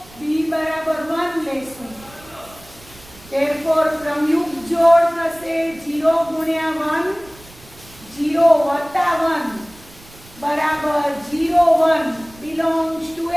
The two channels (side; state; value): right; noise; rumble, 23 dB below the sound